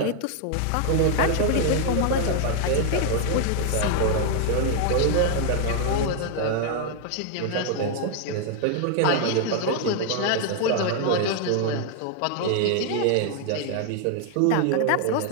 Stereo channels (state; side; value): different; both; correlation 0.00